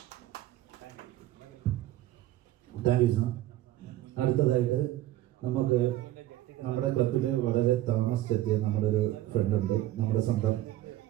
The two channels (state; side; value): quieter; left; 14.8 dB